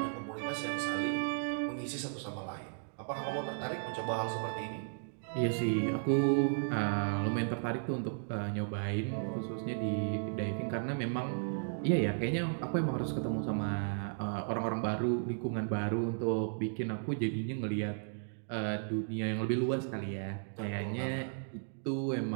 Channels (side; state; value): left; silent; digital silence